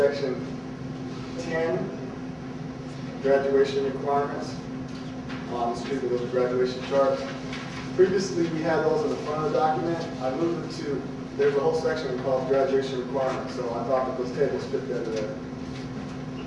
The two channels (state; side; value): identical; both; correlation 1.00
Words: 10, graduation requirements. Excuse me, those graduation charts. Previously, we had those in the front of the document. I moved it to, there's a whole section called graduation requirements, so I thought that those tables fit better there.